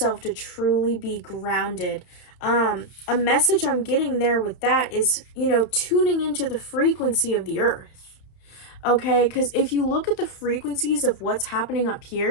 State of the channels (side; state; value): right; late; 31 ms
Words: to truly be grounded. A message I'm getting there with that is, tuning into the frequency of the earth. Okay, because if you look at the frequencies of what's happening up